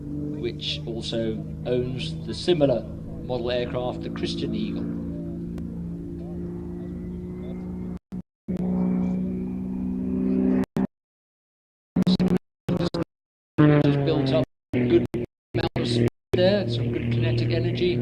which also owns the similar model aircraft, the Christian Eagle. Has built up a good amount of speed there, some good kinetic energy.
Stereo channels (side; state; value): both; identical; correlation 1.00